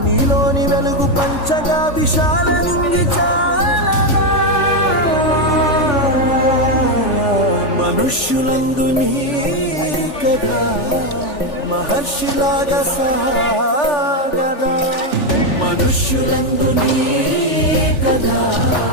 నీలోని వెలుగు పంచగా విశాల నింగి చాలదా మనుష్యులందు నీ కదా మహర్షిలాగా సాగదా మనుష్యులందు నీ కదా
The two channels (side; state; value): right; late; 3.4 ms